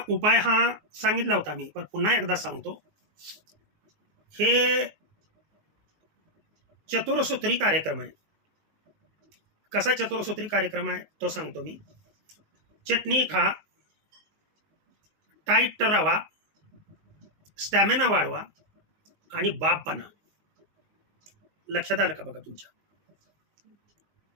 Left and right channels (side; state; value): left; late; 19 ms